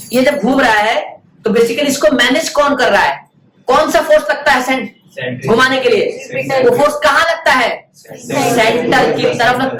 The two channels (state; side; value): identical; both; correlation 1.00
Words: ये जब घूम रहा है तो बेसिकली इसको मैनेज कौन कर रहा है? कौन सा फोर्स लगता है घुमाने के लिए? वो फोर्स कहाँ लगता है? सेंटर की तरफ